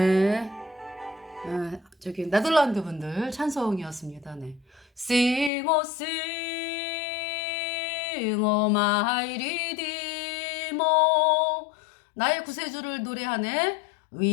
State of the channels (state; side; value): drops out; right; at 5.5 s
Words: 저기 네덜란드 분들 찬송이었습니다. 네. Sing, oh, sing, oh, my redeemer. 나의 구세주를 노래하네.